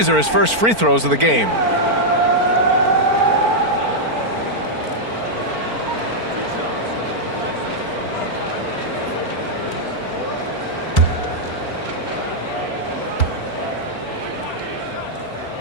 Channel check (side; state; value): left; late; 4.4 ms